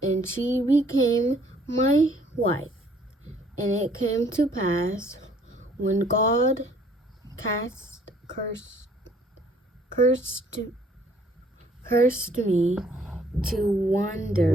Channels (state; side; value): normal; both; correlation 0.61